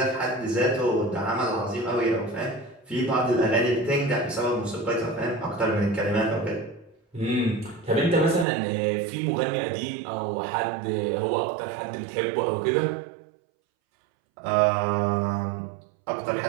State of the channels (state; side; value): drops out; left; at 8.5 s